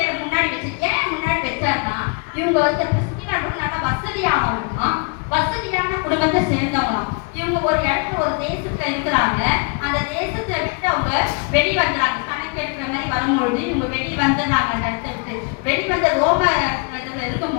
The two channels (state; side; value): quieter; right; 33.6 dB